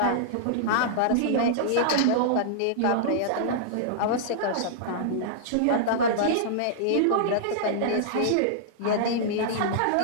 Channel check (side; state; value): both; different; correlation -0.02